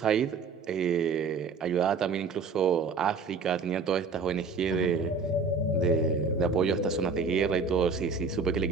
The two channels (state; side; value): quieter; left; 4.7 dB